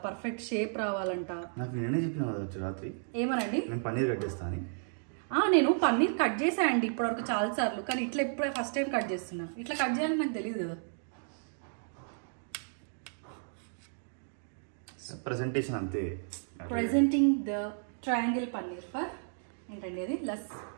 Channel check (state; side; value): silent; left; digital silence